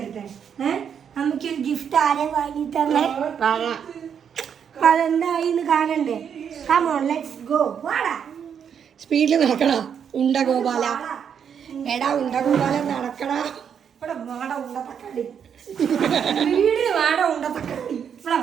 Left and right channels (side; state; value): left; quieter; 7.8 dB